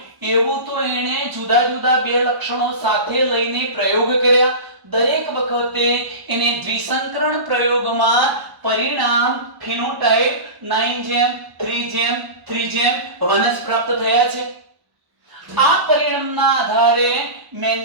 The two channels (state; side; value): late; left; 1.1 ms